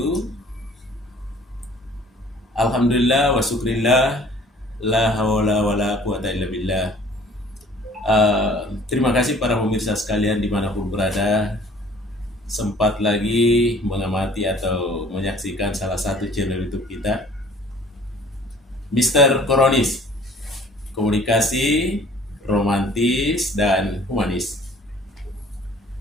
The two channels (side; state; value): both; normal; correlation 0.52